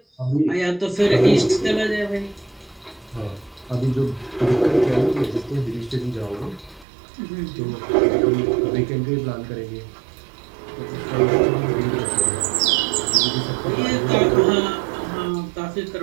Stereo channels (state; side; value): drops out; left; at 6.9 s